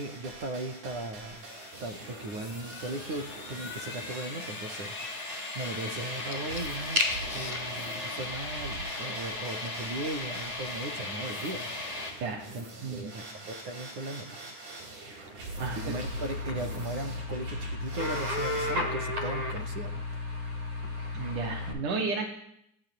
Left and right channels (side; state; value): left; late; 9.2 ms